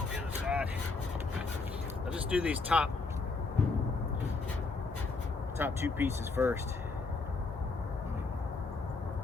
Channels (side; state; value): right; quieter; 3.9 dB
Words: the other side. I'll just do these top two pieces first.